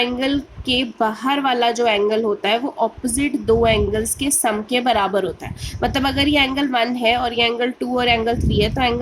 के बाहर वाला जो एंगल होता है वो ऑपोजिट दो एंगल्स के सम के बराबर होता है। मतलब अगर ये एंगल 1 है और ये एंगल 2 और एंगल 3 है, तो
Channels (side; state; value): both; identical; correlation 1.00